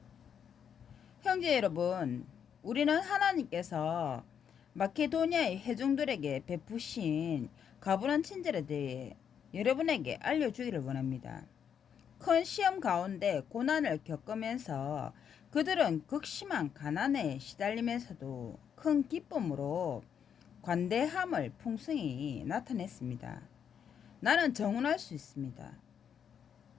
형제 여러분, 우리는 하나님께서 마케도니아의 회중들에게 베푸신 가분한 친절에 대해 여러분에게 알려주기를 원합니다. 큰 시험 가운데 고난을 겪으면서 그들은 극심한 가난에 시달리면서도 큰 기쁨으로 관대함을 풍성히 나타냈습니다. 나는 정언할 수 있습니다.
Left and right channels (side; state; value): right; quieter; 8.0 dB